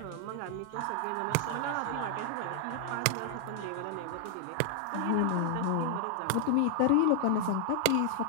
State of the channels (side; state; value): both; different; correlation 0.00